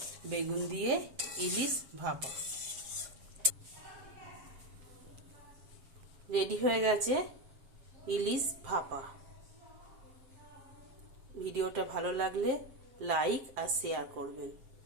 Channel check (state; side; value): late; left; 7.5 ms